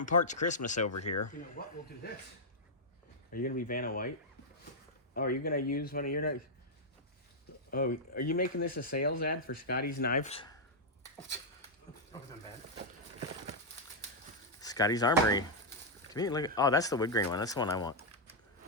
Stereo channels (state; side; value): normal; both; correlation -0.05